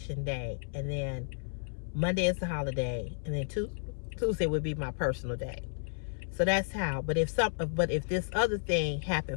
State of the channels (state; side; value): silent; right; 56 dB below the other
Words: day. And then Monday is the holiday. And then Tuesday would be my personal day. So that's how. But if this other thing